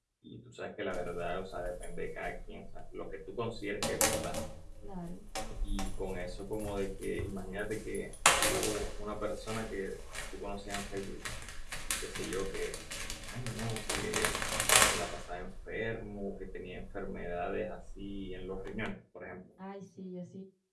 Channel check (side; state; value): both; identical; correlation 1.00